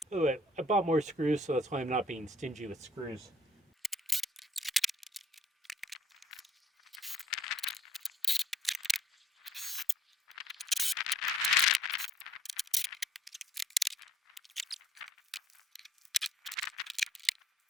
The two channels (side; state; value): both; normal; correlation 0.63